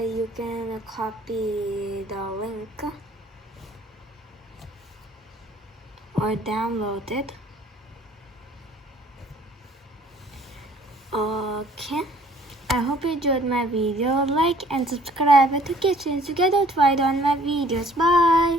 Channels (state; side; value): normal; both; correlation 0.56